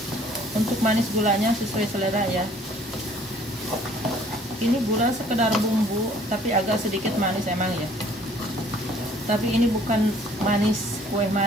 Untuk manis gulanya sesuai selera ya. Ini gula sekedar bumbu, tapi agak sedikit manis emang ya. Tapi ini bukan manis, kue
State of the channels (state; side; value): normal; both; correlation 0.56